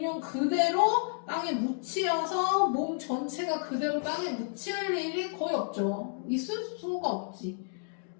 그대로 땅에 묻히어서 몸 전체가 그대로 땅에 묻힐 일이 거의 없죠. 있을 수가 없지.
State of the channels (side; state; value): right; silent; 57 dB below the other